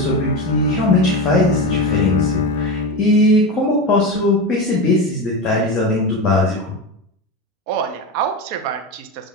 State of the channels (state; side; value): normal; both; correlation 0.20